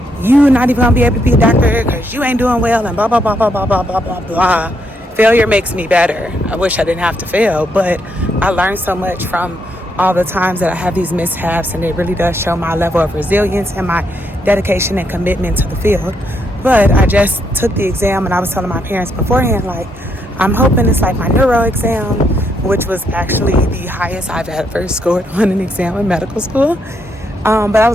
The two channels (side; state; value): both; normal; correlation 0.76